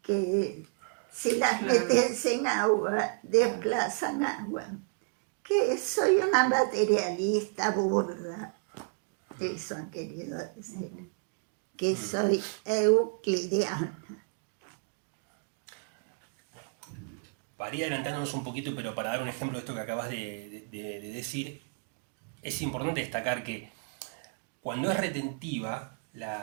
que si las metes en agua, desplazan agua. Que soy una materialista burda. Eso han querido decir. Que soy euclidiana. Para ir adelantándonos un poquito, pero para dar un ejemplo de esto que acabas de decir, es importante destacar que cuando es retentiva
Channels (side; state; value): left; quieter; 38.3 dB